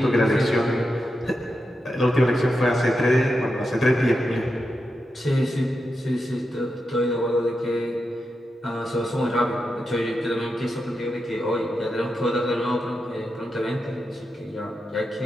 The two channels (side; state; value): both; normal; correlation 0.88